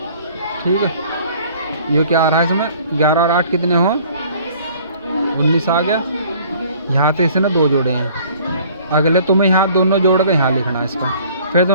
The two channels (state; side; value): inverted; both; correlation -0.54